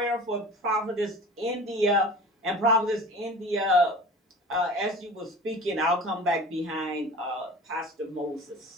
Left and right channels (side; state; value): both; normal; correlation 0.39